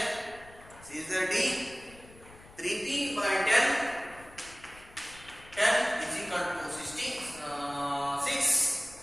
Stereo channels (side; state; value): left; noise; rumble, 21 dB below the sound